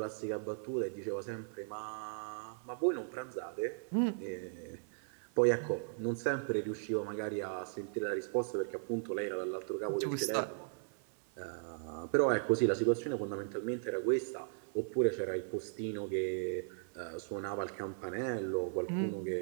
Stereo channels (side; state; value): left; silent; 53 dB below the other